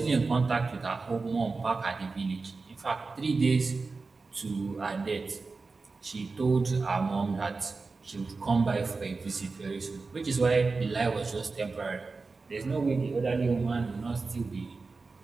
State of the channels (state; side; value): quieter; left; 4.1 dB